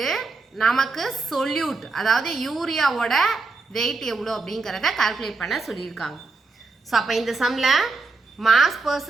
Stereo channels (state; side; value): quieter; left; 3.8 dB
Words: நமக்கு சொல்யூட் அதாவது யூரியாவோட வெயிட் எவ்வளோ அப்படிங்கிறத கால்குலேட் பண்ண சொல்லியிருக்காங்க. ஸோ அப்போ இந்த சம்மில் மாஸ்